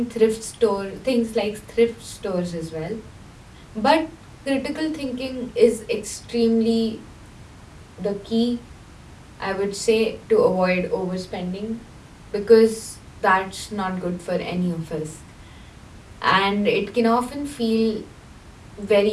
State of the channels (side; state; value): both; identical; correlation 1.00